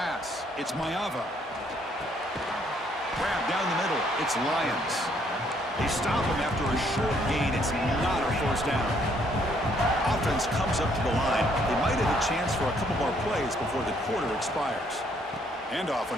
It's Maeva. Grab down the middle. It's Lions. They stop him after a short gain. It's not a first down. Offense comes up to the line. They might have a chance for a couple more plays before the quarter expires. Handoff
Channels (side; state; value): both; normal; correlation 0.68